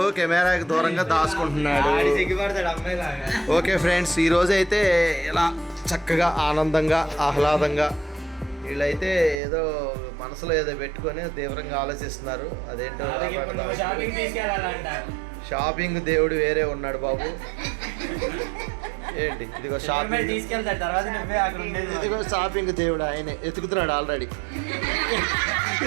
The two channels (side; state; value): left; drops out; at 9.4 s